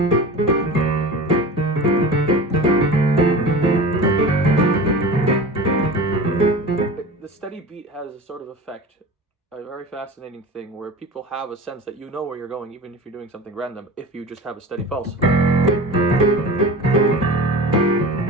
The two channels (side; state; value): both; normal; correlation 0.34